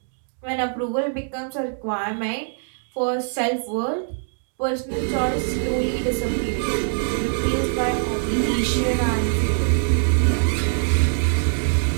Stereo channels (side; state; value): left; silent; digital silence